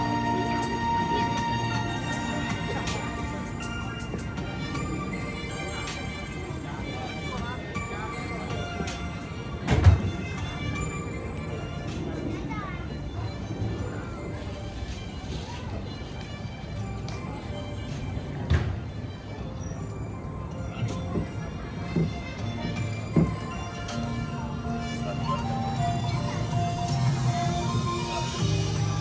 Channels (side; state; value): both; identical; correlation 1.00